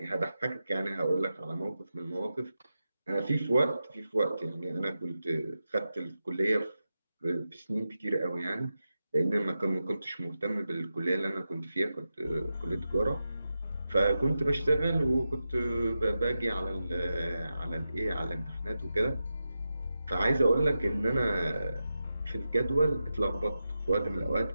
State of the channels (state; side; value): inverted; both; correlation -0.91